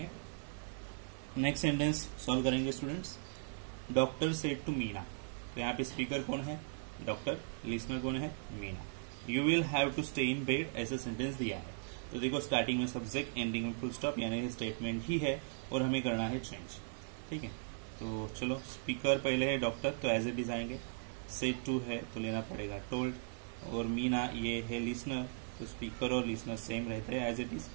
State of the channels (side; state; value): left; silent; digital silence